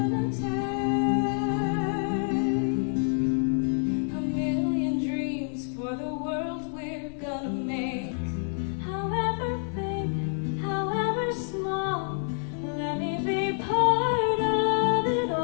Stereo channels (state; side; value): silent; right; 60 dB below the other